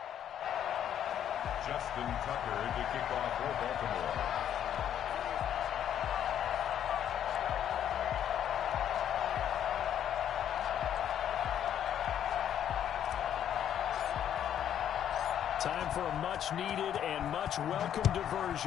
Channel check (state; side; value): quieter; right; 10.0 dB